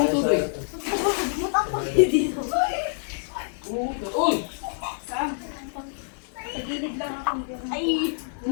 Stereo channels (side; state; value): right; silent; 61 dB below the other